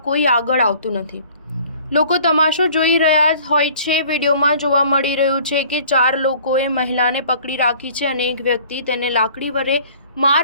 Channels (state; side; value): inverted; both; correlation -0.51